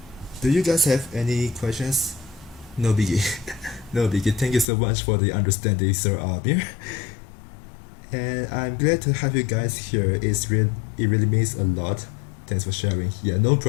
do you guys have any questions? No biggie. No biggie. Thank you so much for the understanding, Sir Amir. And I'm glad to have you guys here. It really means a lot. Thanks for sharing. Yeah, no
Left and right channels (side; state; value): right; drops out; at 4.7 s